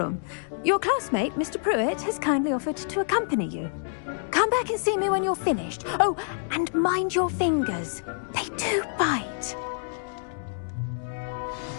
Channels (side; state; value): right; silent; digital silence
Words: Your classmate, Mr. Pruitt, has kindly offered to accompany you. Come back and see me when you're finished. Oh, and mind your fingers. They do bite.